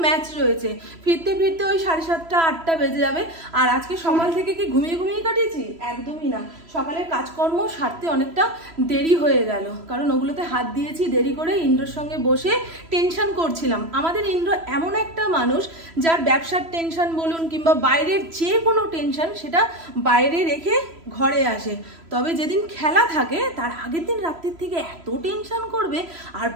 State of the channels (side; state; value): left; late; 3.0 ms